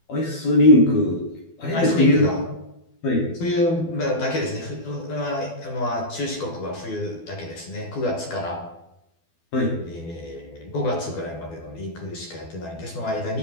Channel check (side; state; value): right; late; 12 ms